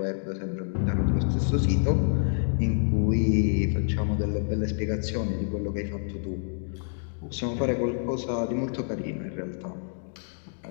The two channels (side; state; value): right; silent; digital silence